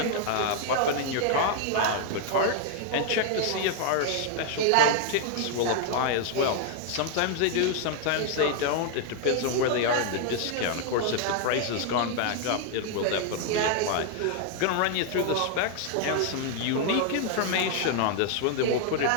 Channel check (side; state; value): both; different; correlation 0.00